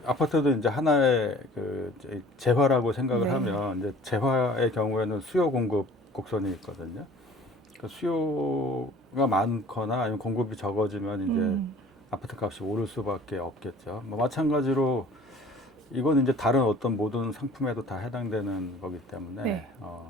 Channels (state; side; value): normal; both; correlation 0.48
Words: 아파트도 이제 하나의 그 재화라고 생각을 네, 하면 이제 재화의 경우에는 수요 공급 곡선이 있거든요. 그 수요가 많거나 아니면 공급이 적어지면 이제 음, 아파트 값이 오를 수밖에 없겠죠. 뭐 마찬가지로 이건 이제 다른 어떤 모든 상품에도 다 해당되는 거기 때문에 네,